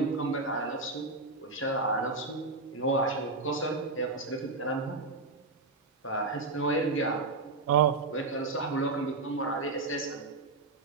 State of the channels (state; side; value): quieter; left; 3.6 dB